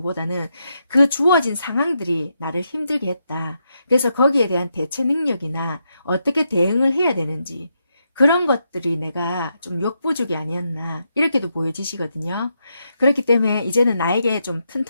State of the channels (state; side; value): inverted; both; correlation -0.82